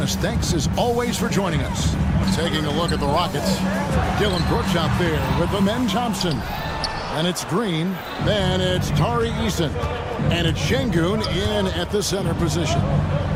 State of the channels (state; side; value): identical; both; correlation 1.00